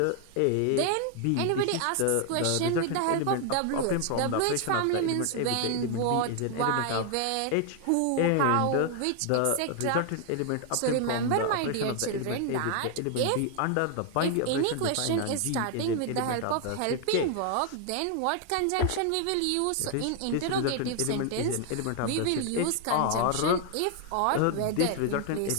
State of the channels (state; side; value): different; both; correlation 0.00